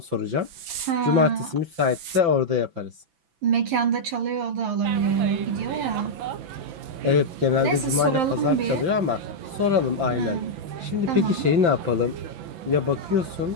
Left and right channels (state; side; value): late; left; 5.9 ms